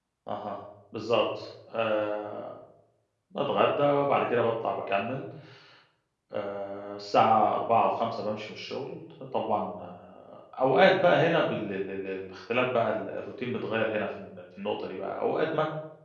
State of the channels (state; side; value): identical; both; correlation 1.00